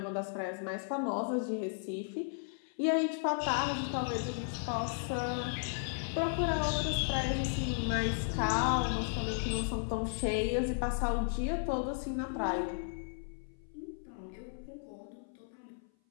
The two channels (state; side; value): silent; right; 54 dB below the other